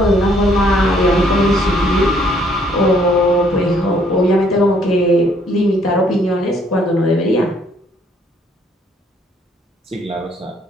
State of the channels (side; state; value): both; normal; correlation 0.65